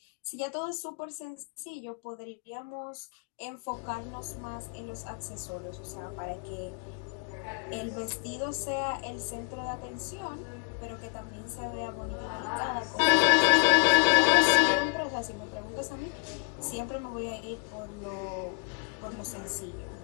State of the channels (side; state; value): right; quieter; 35.3 dB